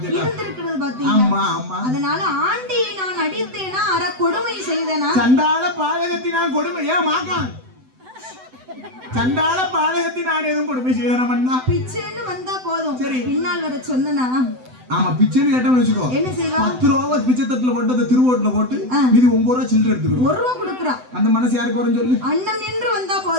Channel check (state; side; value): late; left; 7.9 ms